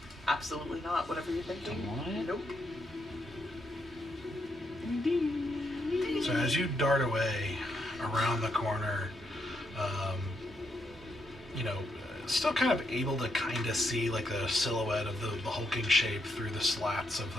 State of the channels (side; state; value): both; normal; correlation 0.79